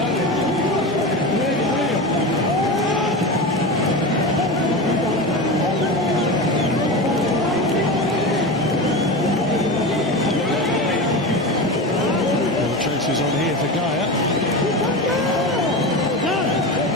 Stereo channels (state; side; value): normal; both; correlation 0.24